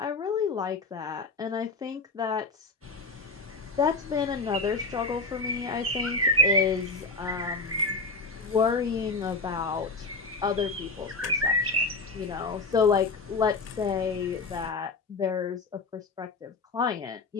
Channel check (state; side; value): quieter; right; 3.5 dB